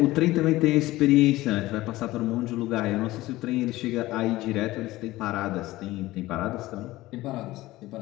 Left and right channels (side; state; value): right; quieter; 17.6 dB